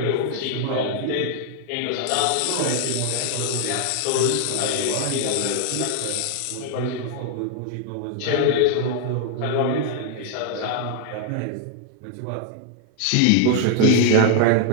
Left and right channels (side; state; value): both; different; correlation 0.00